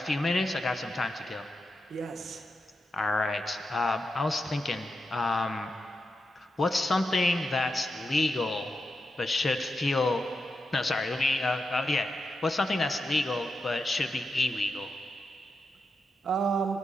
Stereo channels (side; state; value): both; normal; correlation 0.88